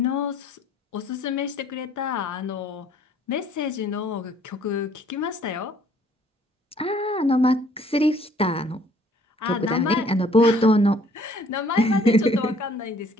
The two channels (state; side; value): normal; both; correlation 0.60